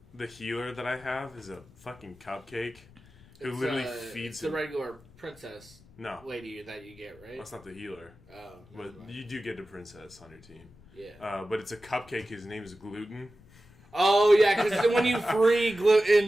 healer that I have is a fucking cupcake who literally feeds the regular princess lady that you get, right? That's not the healer. Oh, but you do get a princess on your team. Yeah. But it's a cupcake. His name is Gluten. Oh yeah, because when you free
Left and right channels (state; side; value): noise; left; rumble, 25 dB below the sound